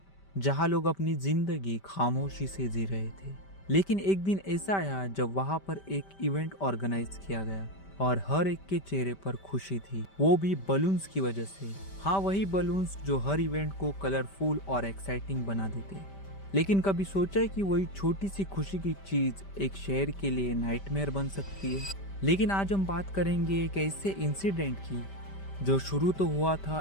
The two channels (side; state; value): right; late; 5.1 ms